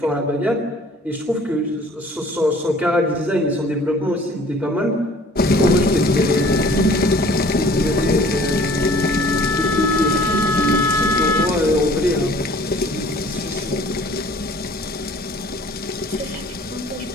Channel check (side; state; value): both; normal; correlation 0.52